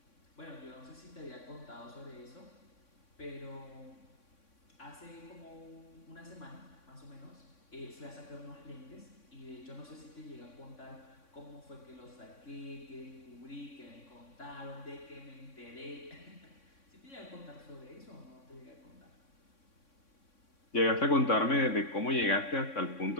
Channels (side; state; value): right; late; 3.6 ms